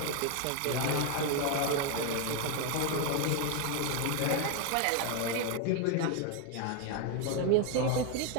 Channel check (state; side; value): different; both; correlation 0.01